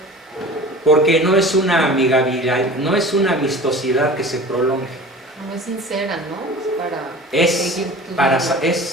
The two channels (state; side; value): normal; both; correlation 0.39